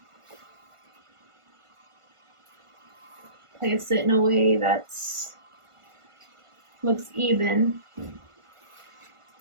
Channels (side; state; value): left; late; 1.5 ms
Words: Place it in a way that looks even.